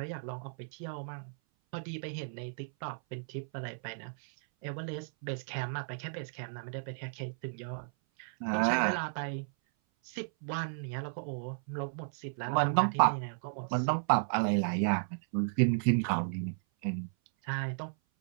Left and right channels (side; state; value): left; silent; 55 dB below the other